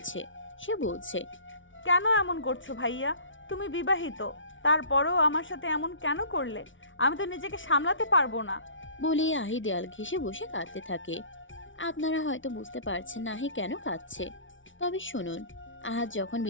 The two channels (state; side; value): late; right; 0.56 ms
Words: সে বলছে, কেন এমন করছো ভাইয়া? তুমি বিবাহিত, তারপরেও আমার সাথে এমন কেন করলে? আমি তো নিজেকে সামলাতে পারবো না। বলে আহি দেয়াল ঘেঁষে বসে কাঁদতে থাকে। আপনারা হয়তো বুঝতে পারছেন না আহি কেন কাঁদছে। তবে শুনুন, আহাদ যখন